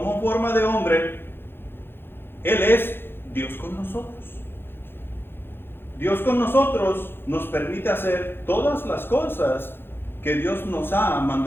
forma de hombre, Él es Dios con nosotros. Dios con nosotros nos permite hacer todas las cosas que Dios nos ha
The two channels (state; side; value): late; right; 0.10 ms